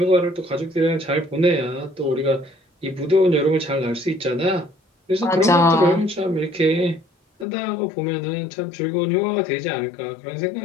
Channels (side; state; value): right; drops out; at 7.5 s